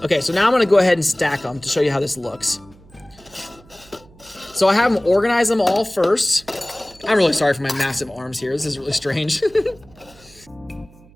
Okay, so now I'm gonna go ahead and stack them to show you how this looks. So I have them organize them all first. I'm really sorry for my massive arms here, this is really strange.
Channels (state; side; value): noise; right; hum, 25 dB below the sound